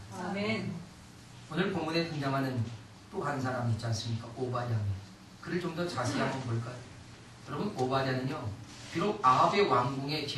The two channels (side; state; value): both; identical; correlation 1.00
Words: 아멘. 오늘 본문에 등장하는 또 한 사람 있지 않습니까? 오바댜. 그를 좀 더 자세히 한번 볼까요? 여러분, 오바댜는요, 비록 아합의 왕궁의